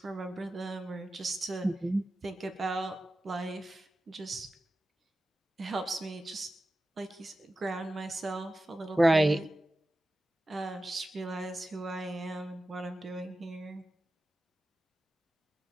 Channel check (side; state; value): both; normal; correlation 0.94